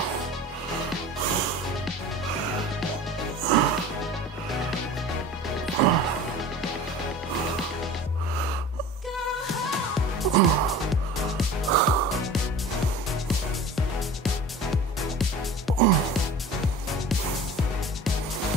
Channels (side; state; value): both; normal; correlation 0.39